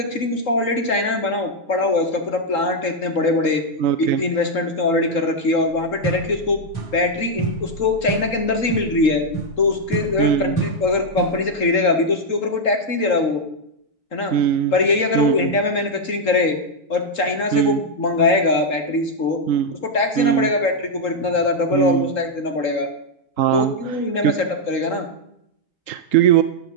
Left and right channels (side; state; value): right; late; 3.8 ms